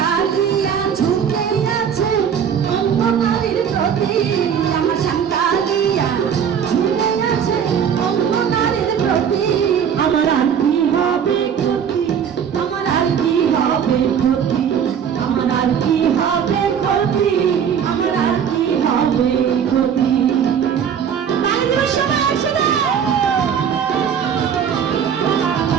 ঝুঁকে আছে অন্য নারীর প্রতি, আমার শ্যামকালিয়া ঝুঁকে আছে অন্য নারীর প্রতি। আমার আর কি হবে ক্ষতি, আমার আর কি হবে ক্ষতি, আমার আর কি হবে ক্ষতি, আমার আর কি হবে ক্ষতি। তালি দিবস সবাই একসাথে।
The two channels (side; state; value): left; quieter; 7.9 dB